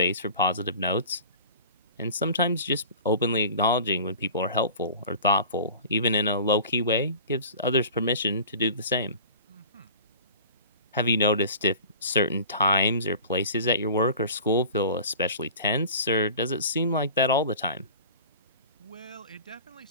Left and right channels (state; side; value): inverted; both; correlation -0.41